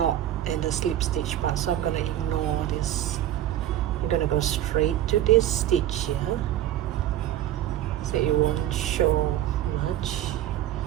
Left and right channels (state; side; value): quieter; left; 12.6 dB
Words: and the slip stitch part. So I'm going to ignore this. I'm going to go straight to this stitch here. So it won't show much.